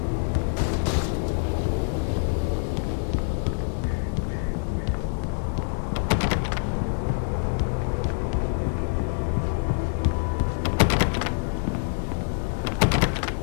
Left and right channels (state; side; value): silent; right; digital silence